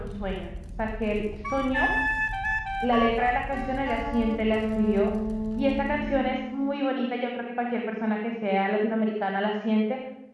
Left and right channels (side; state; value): both; identical; correlation 1.00